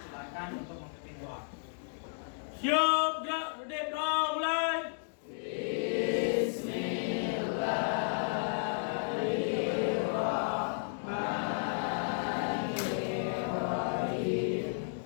silakan untuk memimpin doa. Siap, gerak, berdiri, doa, mulai.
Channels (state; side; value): silent; right; digital silence